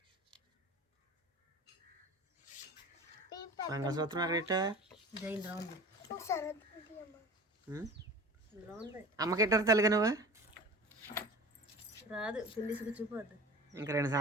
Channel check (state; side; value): normal; both; correlation 0.38